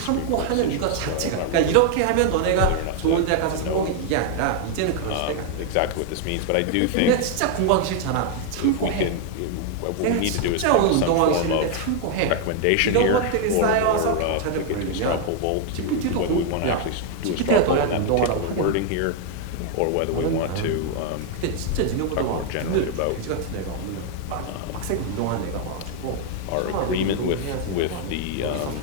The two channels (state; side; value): different; both; correlation 0.00